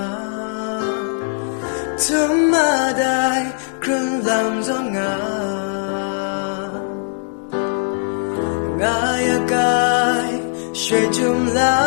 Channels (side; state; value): right; silent; digital silence